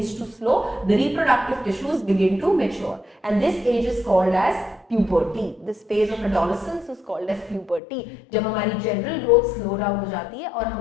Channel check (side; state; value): right; drops out; at 7.8 s